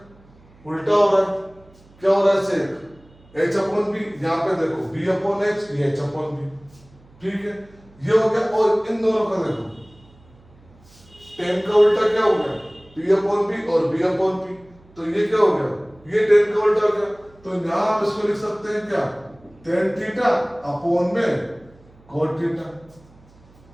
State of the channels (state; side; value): noise; right; hum, 27 dB below the sound